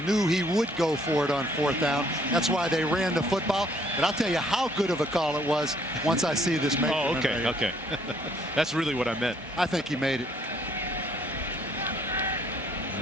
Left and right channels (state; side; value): normal; both; correlation 0.64